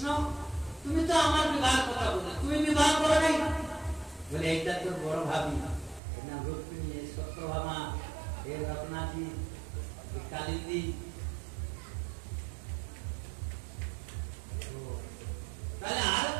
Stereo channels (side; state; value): left; drops out; at 6.0 s